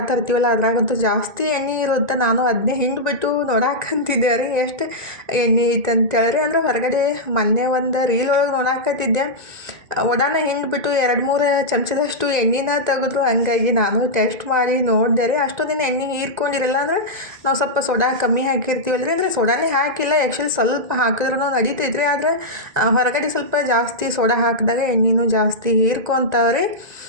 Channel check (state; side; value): late; left; 1.9 ms